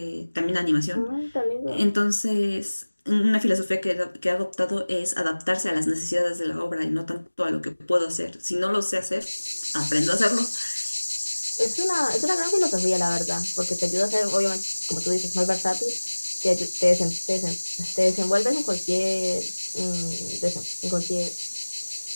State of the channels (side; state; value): both; inverted; correlation -1.00